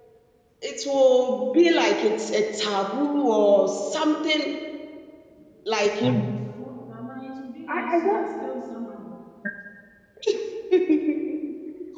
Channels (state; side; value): identical; both; correlation 1.00